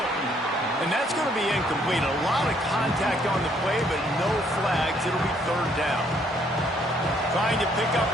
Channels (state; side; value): normal; both; correlation 0.67